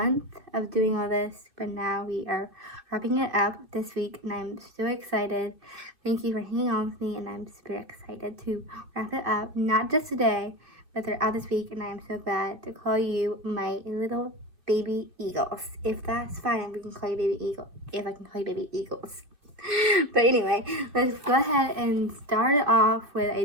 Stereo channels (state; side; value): late; left; 2.4 ms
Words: of doing all this, but now we are wrapping it up this week, and I'm so excited. Thank you for hanging on with me, and I'm super excited to wrap it up, not just today, but throughout this week, and I am so glad to call you my little baby eagles. If that's fine, we can call you baby eagle, if I can call you baby eagles. But anyway, let's go ahead and start it off with